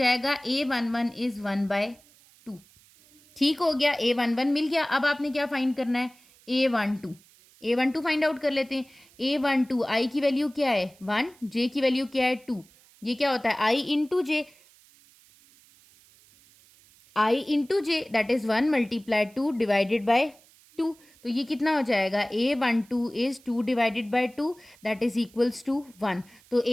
A11 इज 1/2। ठीक हो गया, A11 मिल गया। अब आपने क्या फाइंड करना है, A12 फाइंड आउट कर लेते हैं। A12 आई की वैल्यू क्या है 1, जे की वैल्यू क्या है 2। ये क्या होता है i into j, i into j that is 1 multiply 2 divided by 2। तो ये कितना हो जाएगा, A12 is 2 divided by 2 that is equals to 1। तो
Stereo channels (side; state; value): right; noise; hiss, 28 dB below the sound